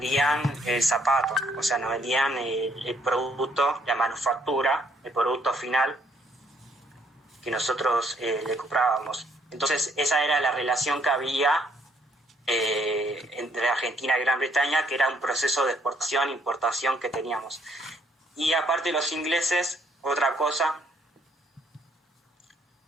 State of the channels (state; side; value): normal; both; correlation 0.67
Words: el zapato, o sea, nos vendían el producto, la manufactura, el producto final que nosotros le comprábamos. Entonces esa era la relación que había entre Argentina y Gran Bretaña, que era un proceso de exportación e importación que teníamos. Y aparte los ingleses, otra cosa,